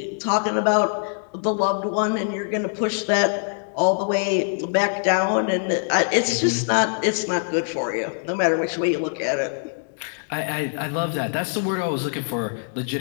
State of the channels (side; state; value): right; silent; digital silence